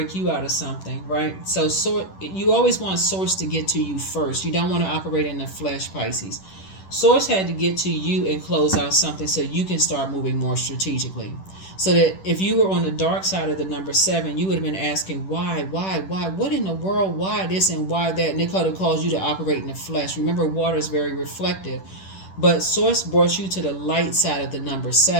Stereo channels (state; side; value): late; right; 10 ms